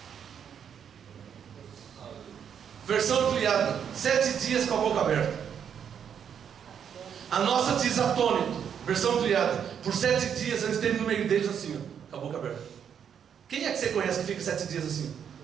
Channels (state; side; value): quieter; left; 8.1 dB